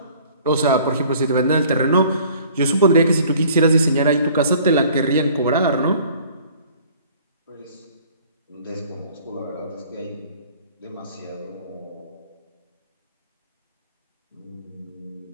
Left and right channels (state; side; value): inverted; both; correlation -0.53